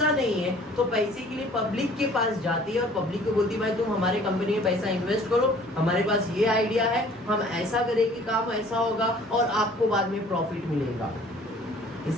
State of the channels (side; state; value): both; normal; correlation 0.53